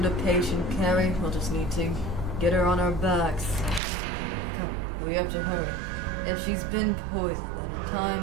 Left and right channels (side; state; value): left; drops out; at 3.8 s